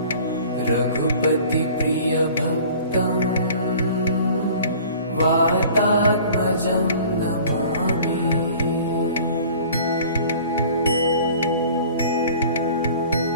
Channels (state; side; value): inverted; both; correlation -0.47